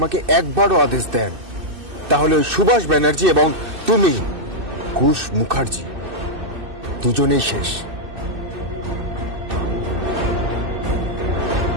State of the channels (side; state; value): left; late; 2.6 ms